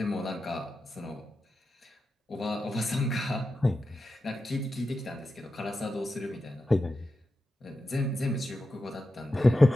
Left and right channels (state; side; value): normal; both; correlation 0.90